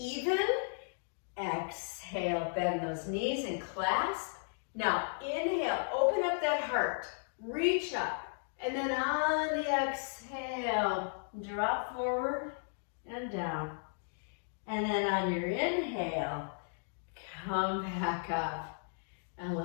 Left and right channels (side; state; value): right; silent; digital silence